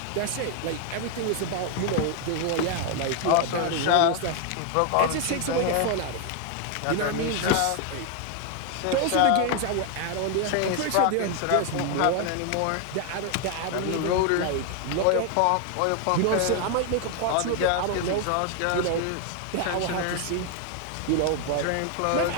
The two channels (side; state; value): both; different; correlation 0.00